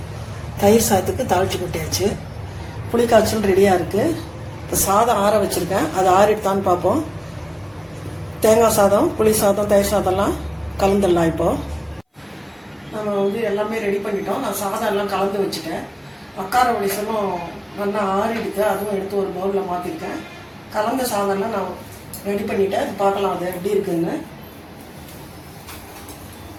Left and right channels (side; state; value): both; identical; correlation 1.00